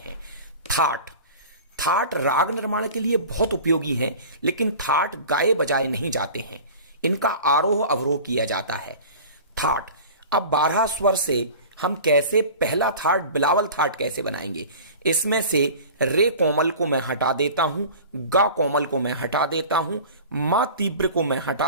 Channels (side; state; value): both; inverted; correlation -0.39